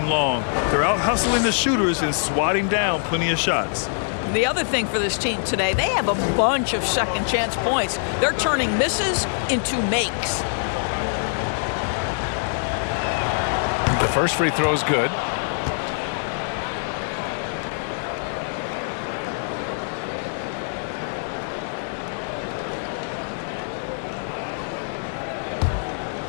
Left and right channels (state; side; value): silent; right; digital silence